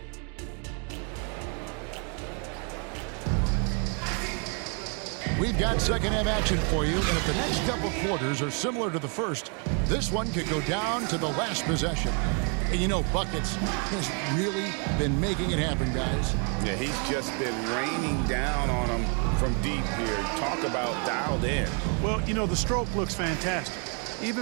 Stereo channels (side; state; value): left; quieter; 38.3 dB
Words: We've got second half action for you, and if the next couple quarters are similar to the first, this one could go down to the last possession. And you know, Buckets has really been making it happen, guys. Yeah, he's just been raining down on them from deep here. Talk about dialed in. Well, you know, the stroke looks fantastic.